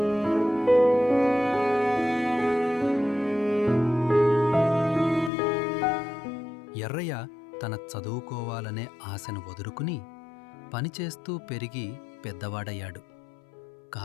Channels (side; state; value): right; drops out; at 5.3 s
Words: ఎర్రయ్య తన చదువుకోవాలనే ఆశను వదులుకుని పనిచేస్తూ పెరిగి పెద్దవాడయ్యాడు.